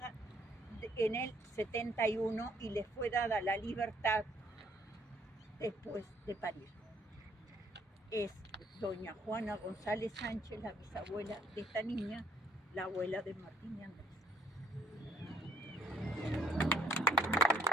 en el 71 y le fue dada la libertad después de parir. Es doña Juana González Sánchez, la bisabuela de esta niña, la abuela de Martín y Andrés.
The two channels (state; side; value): normal; both; correlation 0.64